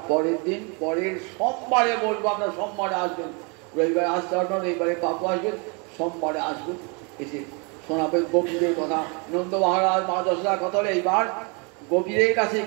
পরের দিন, পরের সোমবারে বলবো। আপনার সোমবারে আসবেন, রবিবারে আসতে পারবেন, রবিবারে পাপু আসবেন, সোমবারে আসবেন, এসে শোনাবেন গোপীদের কথা। নন্দ মহারাজ মা যশোদার কথা হলে এইবার গোপীদের কাছে,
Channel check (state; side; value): quieter; left; 32.9 dB